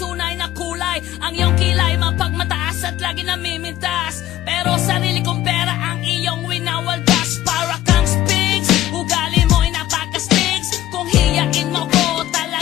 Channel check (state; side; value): quieter; right; 13.7 dB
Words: na kulay. Ang iyong kilay mapagmataas at lagi namimintas, pero sarili kong pera ang iyong winawaldas. Para kang Sphinx, ugali mo'y napaka-stinks. Kung hiyain mo ko,